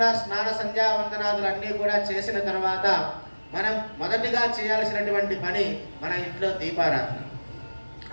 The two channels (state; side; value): inverted; both; correlation -1.00